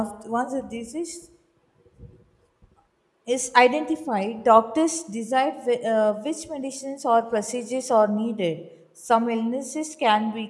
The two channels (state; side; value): identical; both; correlation 1.00